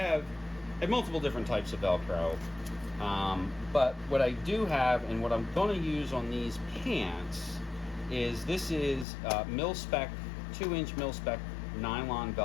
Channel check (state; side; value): drops out; right; at 9.1 s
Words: multiple different types of Velcro, but what I do have and what I'm going to use on these pants is this is mil-spec, 2-inch mil-spec nylon